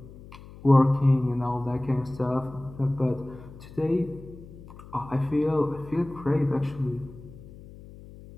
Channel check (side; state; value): left; noise; hum, 18 dB below the sound